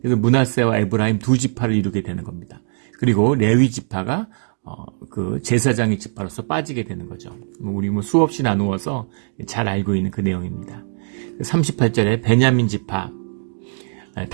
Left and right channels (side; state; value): left; silent; digital silence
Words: 그래서 므낫세와 에브라임 두 지파를 이루게 되는 겁니다. 그리고 레위 지파가 그 제사장의 지파로서 빠지게 되는 거죠. 우리 수없이 나누어서 잘 알고 있는 그 내용입니다. 38절에 베냐민 지파,